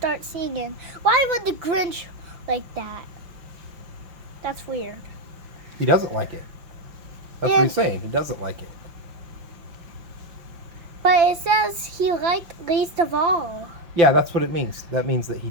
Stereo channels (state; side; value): late; left; 5.9 ms